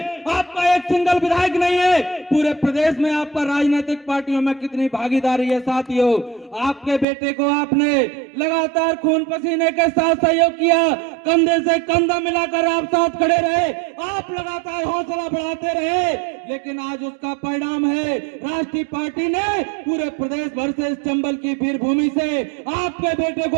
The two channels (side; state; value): left; drops out; at 7.1 s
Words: आपका एक सिंगल विधायक नहीं है। पूरे प्रदेश में आपका राजनीतिक पार्टियों में कितनी भागीदारी है साथियों। आपके बेटे को आपने लगातार खून पसीने के साथ सहयोग किया, कंधे से कंधा मिलाकर आप साथ खड़े रहे, आप लगातार हौसला बढ़ाते रहे, लेकिन आज उसका परिणाम है राष्ट्रीय पार्टी ने पूरे प्रदेश भर से, इस चंबल की वीर भूमि से आपके बेटे